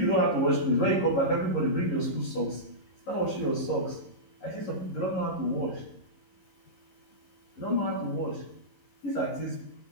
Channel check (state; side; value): late; right; 11 ms